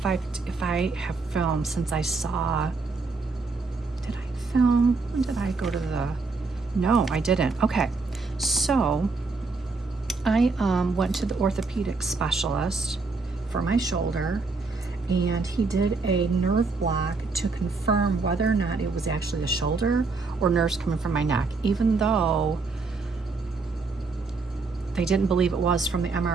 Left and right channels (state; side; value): quieter; left; 4.0 dB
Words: I have filmed since I saw. Did I film? When did I go to the? No, I didn't. Okay, so I went to the orthopedic specialist for my shoulder, and he did a nerve block to confirm whether or not it was actually the shoulder or nerves coming from my neck, even though they didn't believe it was from the